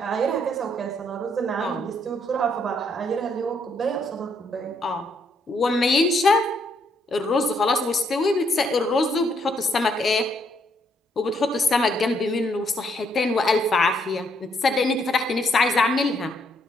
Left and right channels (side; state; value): both; normal; correlation 0.72